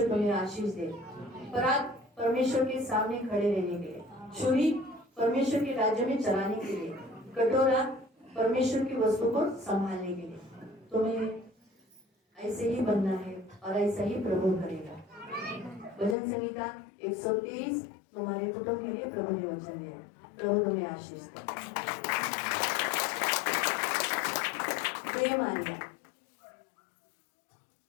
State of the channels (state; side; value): drops out; right; at 16.2 s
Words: तुम्हें आशीष दे। परात परमेश्वर के सामने खड़े रहने के लिए, छुरी परमेश्वर के राज्य में चलाने के लिए, कटोरा परमेश्वर की वस्तु को संभालने के लिए। तुम्हें ऐसे ही बनना है और ऐसा ही प्रभु करेगा। भजन संहिता 123 तुम्हारे कुटुंब के लिए प्रभु ने वचन दिया। प्रभु तुम्हें आशीष दे।